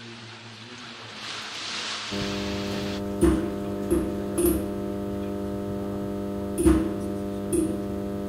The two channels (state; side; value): identical; both; correlation 1.00